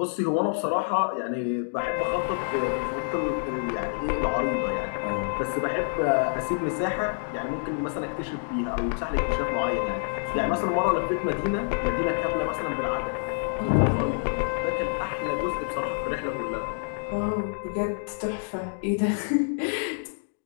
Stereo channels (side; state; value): right; silent; digital silence